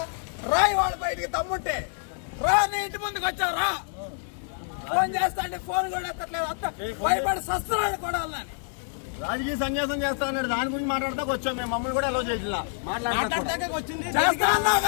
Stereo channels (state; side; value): silent; right; 60 dB below the other